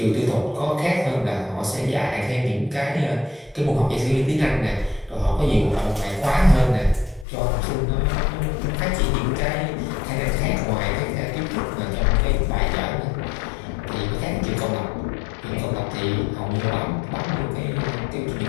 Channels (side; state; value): right; drops out; at 7.2 s